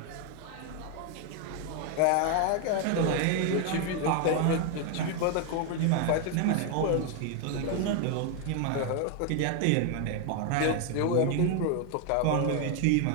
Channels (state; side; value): different; both; correlation 0.01